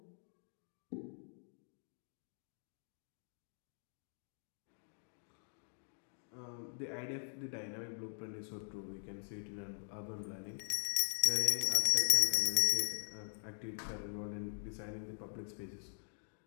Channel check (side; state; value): right; silent; digital silence